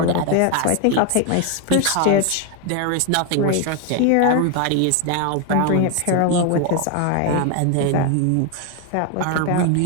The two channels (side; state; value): both; different; correlation 0.01